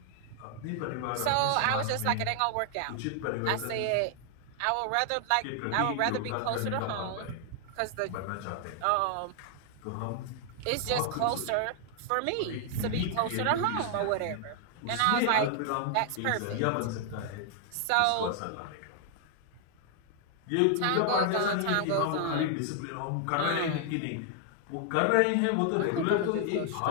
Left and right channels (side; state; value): both; different; correlation 0.00